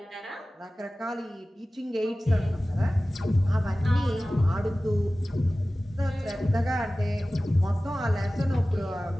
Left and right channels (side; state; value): both; normal; correlation 0.97